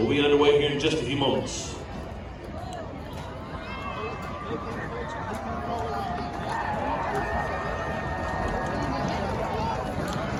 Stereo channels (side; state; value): both; identical; correlation 1.00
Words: be underway here in just a few moments.